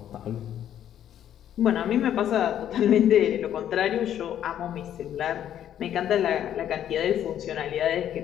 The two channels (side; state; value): right; quieter; 10.5 dB